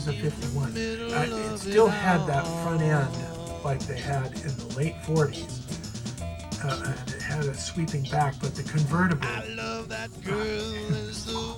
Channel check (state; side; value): identical; both; correlation 1.00